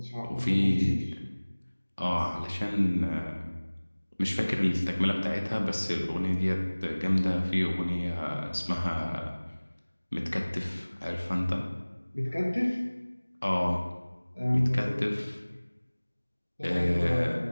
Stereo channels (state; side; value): inverted; both; correlation -1.00